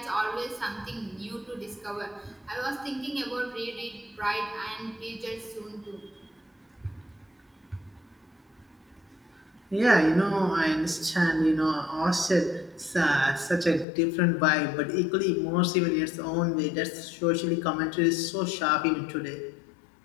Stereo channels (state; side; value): drops out; right; at 13.9 s